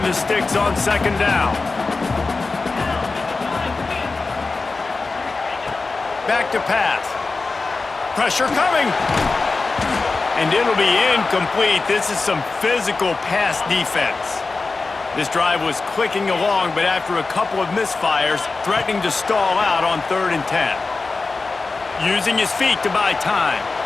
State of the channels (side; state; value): right; quieter; 3.9 dB